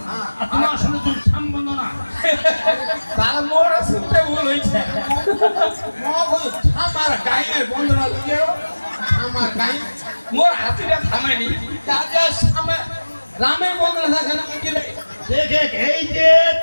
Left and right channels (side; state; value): both; inverted; correlation -1.00